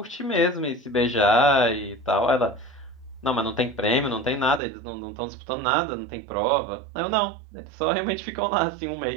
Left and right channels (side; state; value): left; drops out; at 4.6 s